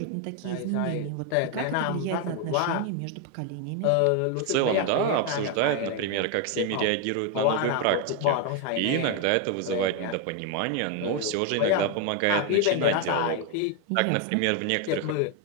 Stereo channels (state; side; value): different; both; correlation 0.01